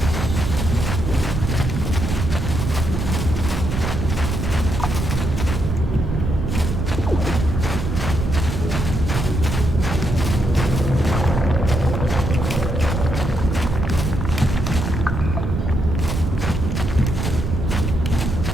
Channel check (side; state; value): right; noise; rumble, 2 dB below the sound